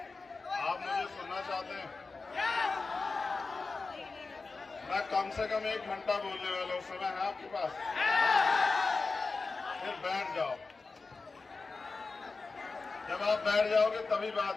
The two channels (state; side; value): quieter; right; 4.0 dB